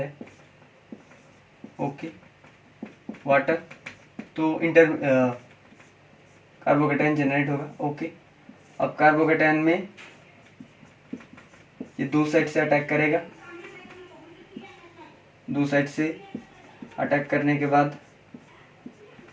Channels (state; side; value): identical; both; correlation 1.00